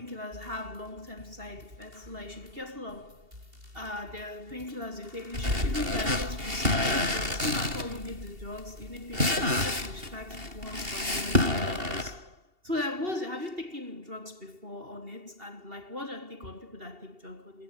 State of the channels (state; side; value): late; left; 2.7 ms